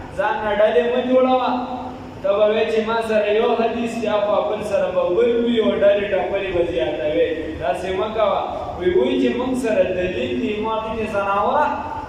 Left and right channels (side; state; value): both; identical; correlation 1.00